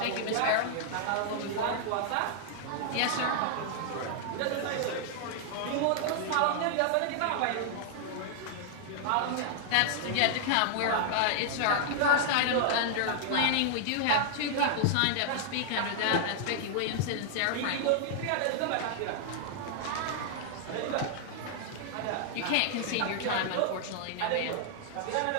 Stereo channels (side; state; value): both; different; correlation -0.01